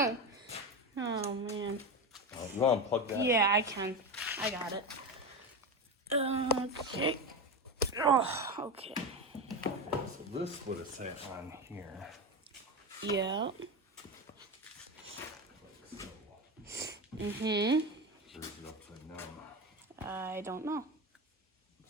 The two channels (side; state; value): both; normal; correlation 0.19